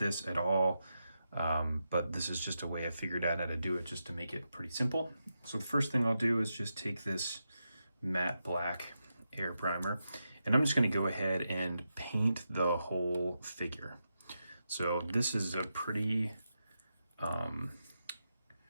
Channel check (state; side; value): inverted; both; correlation -0.87